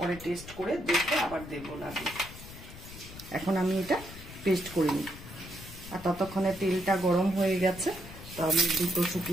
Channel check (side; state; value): left; noise; rumble, 15 dB below the sound